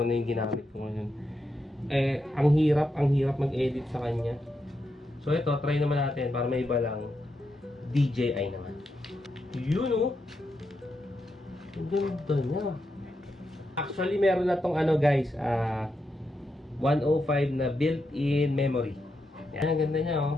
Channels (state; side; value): normal; both; correlation 0.84